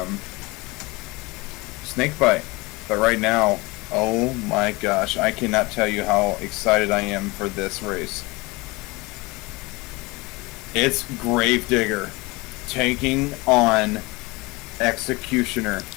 Snakebite. But right now, oh my gosh, I cannot tell you how excited I am for this race. It's Gravedigger taking on Executioner.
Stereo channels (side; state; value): right; quieter; 24.0 dB